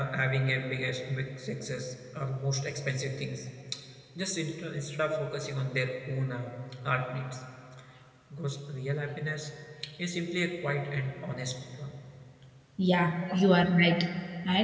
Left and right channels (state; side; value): identical; both; correlation 1.00